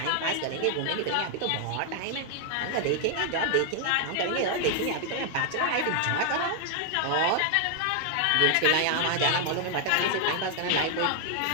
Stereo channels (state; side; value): different; both; correlation 0.00